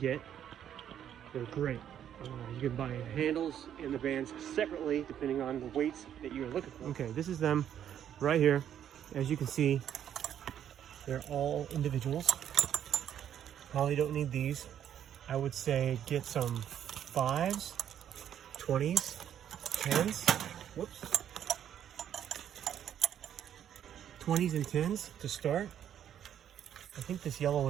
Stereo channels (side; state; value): left; quieter; 9.9 dB